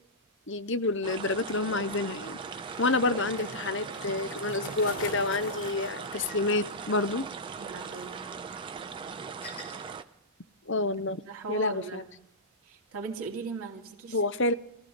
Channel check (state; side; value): normal; both; correlation -0.13